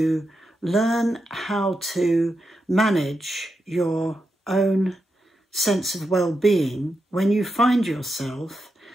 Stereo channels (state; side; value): normal; both; correlation 0.87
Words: learn how to manage your own sense of well-being when you find yourself